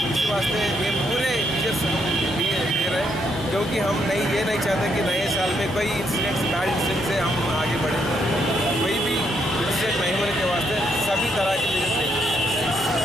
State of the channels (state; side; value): normal; both; correlation 0.75